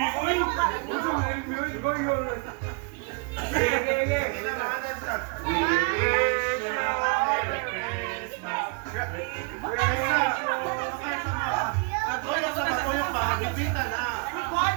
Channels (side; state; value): left; quieter; 33.7 dB